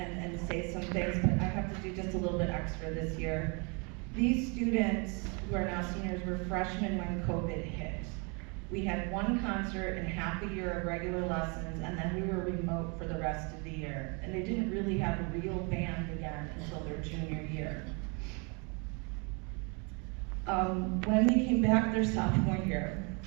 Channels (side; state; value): left; quieter; 33.1 dB